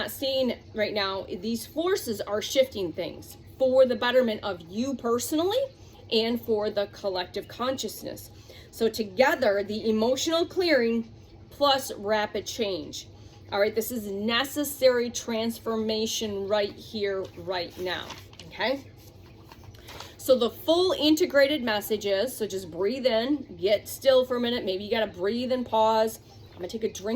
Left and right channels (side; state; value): both; identical; correlation 1.00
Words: seeing right now, these forces are shifting things for the betterment of you personally and for the collective consciousness. So together, the emotional clearing plus rapid change. All right, this is necessary transformation right here, right now, okay? So the full integrated message is, so just breathe in, get still for a minute. Maybe you got to breathe and pause. I'm going to take a